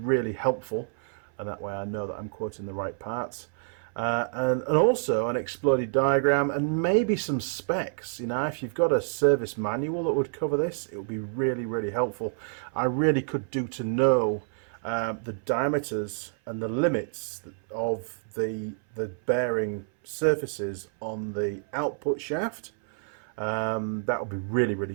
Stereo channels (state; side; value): silent; left; 59 dB below the other